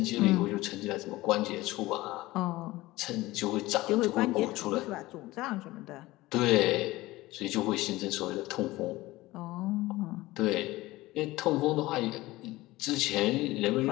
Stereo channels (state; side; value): quieter; right; 18.8 dB